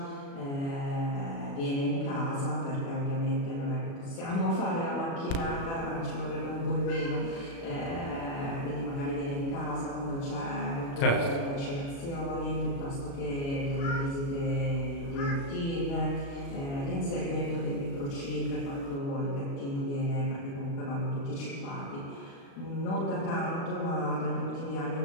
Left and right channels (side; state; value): right; late; 36 ms